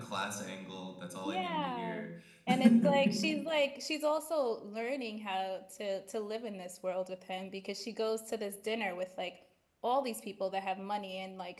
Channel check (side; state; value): both; identical; correlation 1.00